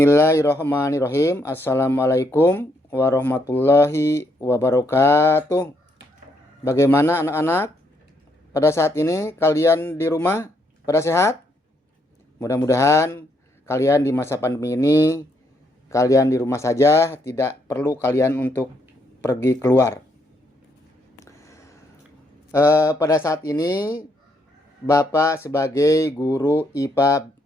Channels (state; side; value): normal; both; correlation 0.74